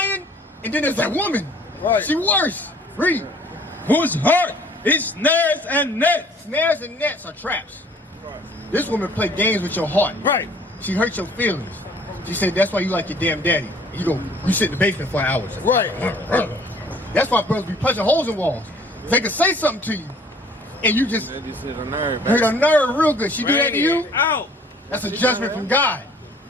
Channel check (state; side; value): normal; both; correlation 0.55